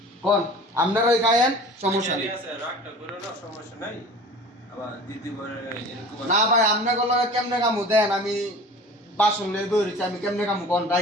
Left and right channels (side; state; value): both; normal; correlation 0.41